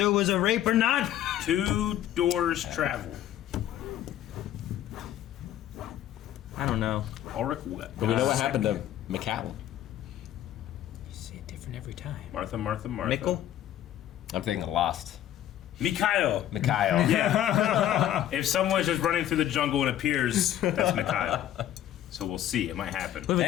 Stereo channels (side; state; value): right; quieter; 11.9 dB